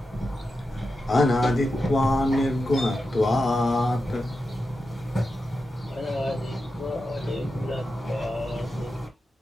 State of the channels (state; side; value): normal; both; correlation 0.90